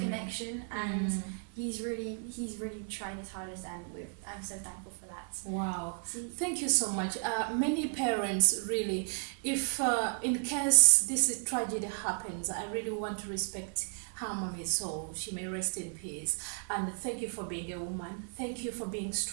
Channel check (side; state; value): left; silent; 55 dB below the other